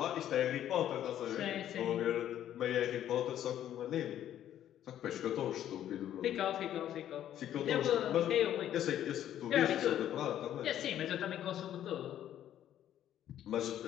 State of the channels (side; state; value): right; quieter; 11.3 dB